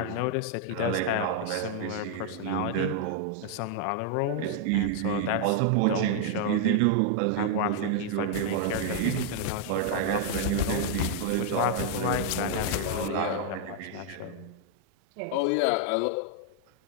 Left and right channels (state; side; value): different; both; correlation 0.00